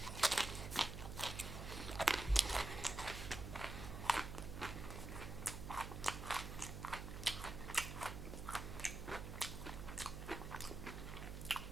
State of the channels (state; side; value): noise; right; hum, 7 dB below the sound